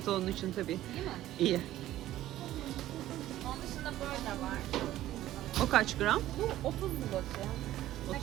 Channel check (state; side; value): quieter; left; 14.1 dB